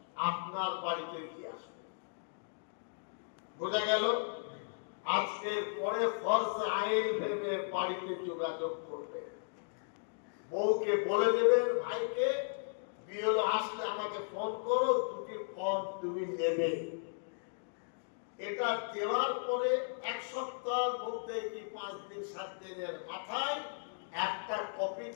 আপনার বাড়িতে দিয়ে আসবে। বোঝা গেল? আজকের পরে ফরজ আইন ভেবে বাড়িতে যোগাযোগ করবে। বউকে বলে দেবেন, ভাইকে বিএলও আসলে আমাকে ফোন করো, দুটি ফর্ম তুমি নেবে। এটা দেওয়ার পরে 1 সপ্তাহের মধ্যে কি 5 দিন 7 দিনের মাথায় একটা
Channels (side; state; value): right; silent; digital silence